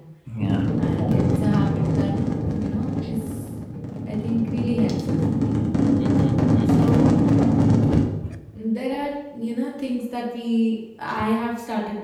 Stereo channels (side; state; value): both; identical; correlation 1.00